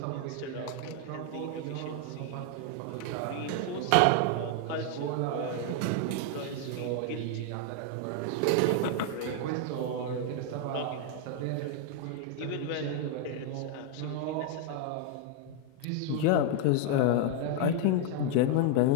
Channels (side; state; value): both; different; correlation 0.00